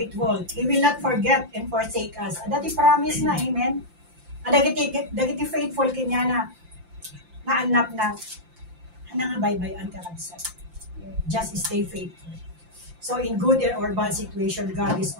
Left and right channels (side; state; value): left; late; 5.8 ms